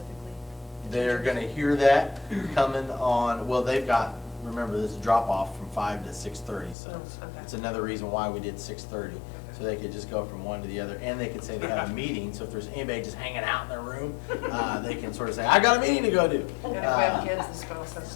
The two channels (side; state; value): right; drops out; at 6.8 s